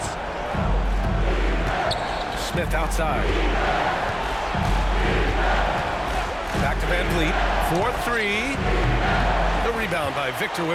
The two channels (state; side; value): identical; both; correlation 1.00